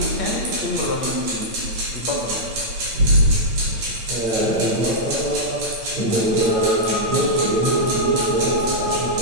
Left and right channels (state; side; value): late; left; 8.9 ms